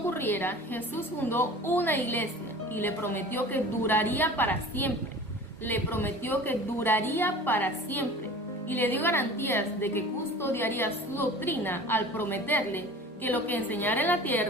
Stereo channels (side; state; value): both; normal; correlation 0.40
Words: Jesús fundó una iglesia y le prometió que duraría para siempre. Le prometió que duraría para siempre y le dio garantías de que custodiaría su doctrina al prometerle que lo que enseñara en la